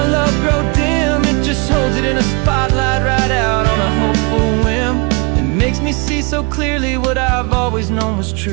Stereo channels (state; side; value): quieter; left; 30.9 dB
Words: love grow dim, it just holds it in a spotlight right out on a hopeful whim. It makes me see so clearly what I've always known was